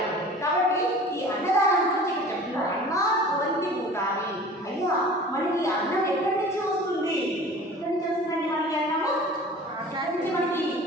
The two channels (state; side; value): normal; both; correlation 0.43